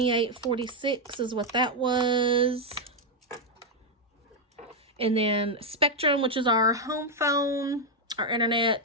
is what that was. And then Spectrum, which is our home phone, our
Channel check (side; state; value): both; normal; correlation 0.01